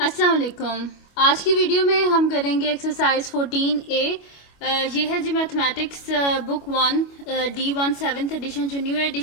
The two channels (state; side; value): late; right; 25 ms